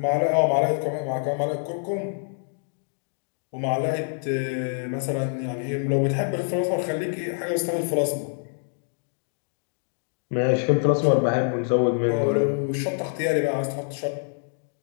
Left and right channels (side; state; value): right; silent; digital silence